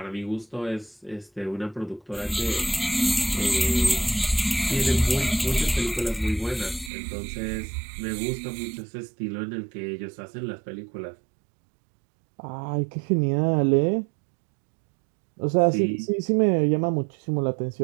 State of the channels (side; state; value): left; drops out; at 6.9 s